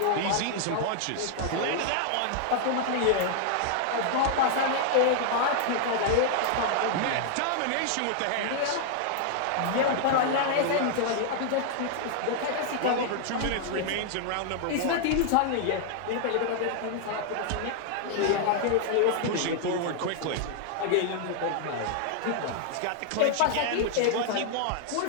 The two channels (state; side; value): different; both; correlation 0.00